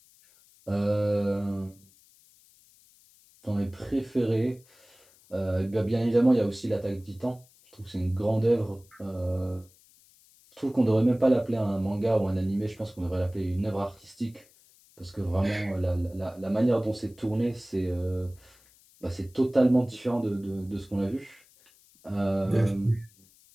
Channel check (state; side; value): noise; left; hiss, 29 dB below the sound